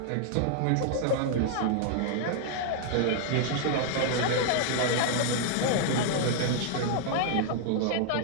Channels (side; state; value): both; different; correlation 0.00